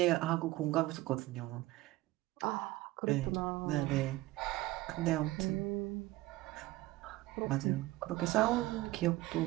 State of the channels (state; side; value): quieter; left; 18.1 dB